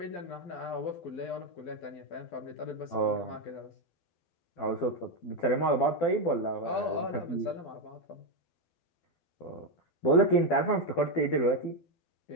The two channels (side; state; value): right; late; 12 ms